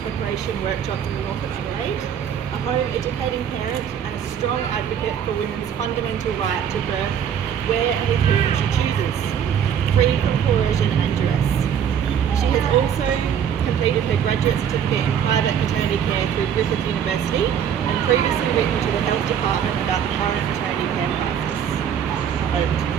preparation workshops in the north of Adelaide, a home educating parent and a strong advocate for women's fundamental right to birth where and with whom she chooses, free from coercion and duress. She has also completed her graduate certificate in private maternity care through Griffith University and previously written to the health department about the current maternity care crisis.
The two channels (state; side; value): quieter; left; 8.6 dB